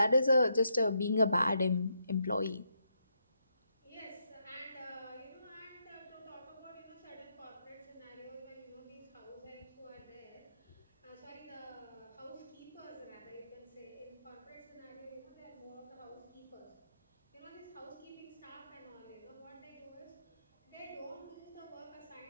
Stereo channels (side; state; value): both; inverted; correlation -0.80